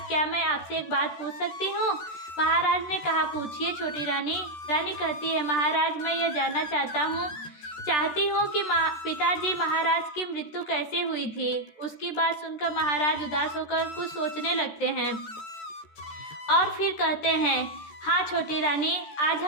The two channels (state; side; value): late; right; 14 ms